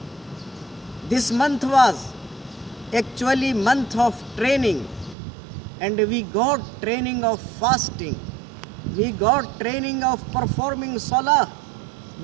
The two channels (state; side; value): drops out; left; at 5.2 s